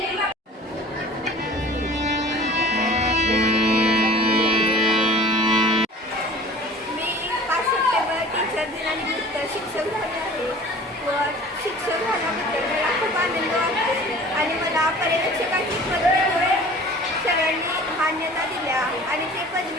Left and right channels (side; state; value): both; normal; correlation 0.44